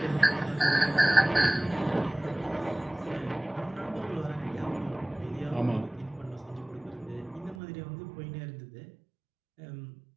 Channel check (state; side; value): drops out; left; at 7.6 s